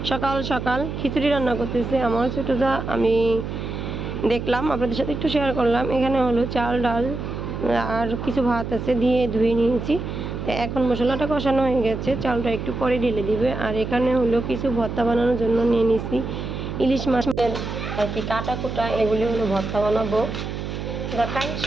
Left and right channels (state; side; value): noise; right; hum, 6 dB below the sound